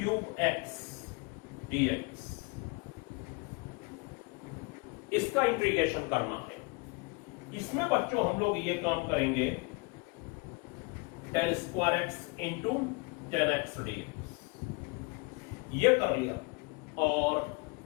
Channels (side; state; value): right; quieter; 29.2 dB